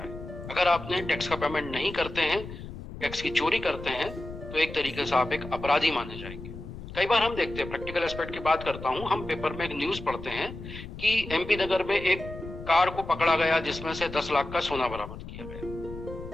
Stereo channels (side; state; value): left; noise; rumble, 11 dB below the sound